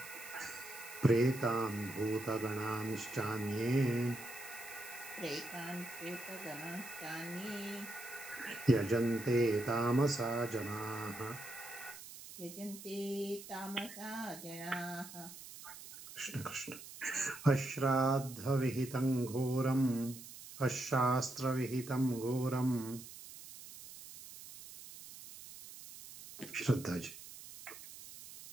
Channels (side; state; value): right; noise; hiss, 14 dB below the sound